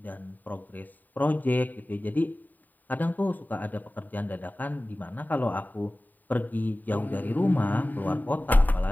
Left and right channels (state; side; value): late; right; 0.086 ms